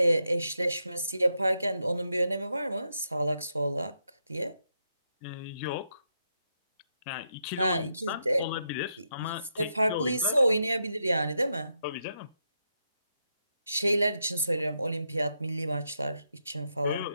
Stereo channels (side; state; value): both; inverted; correlation -0.82